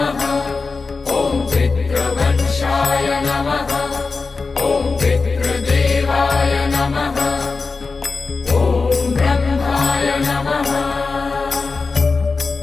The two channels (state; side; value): quieter; right; 4.2 dB